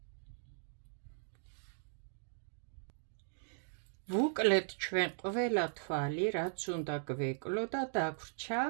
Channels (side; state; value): left; silent; digital silence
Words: ვუკლეთ ჩვენ ყველა თვალი, რაც უნდა გვეკლო და დაგვრჩა